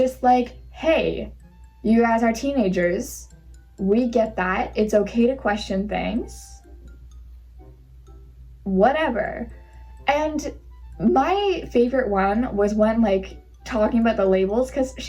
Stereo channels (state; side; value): identical; both; correlation 1.00